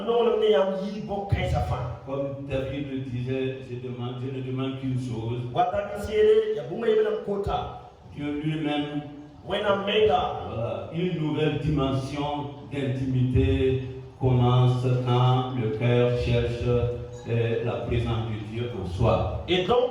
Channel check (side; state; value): both; identical; correlation 1.00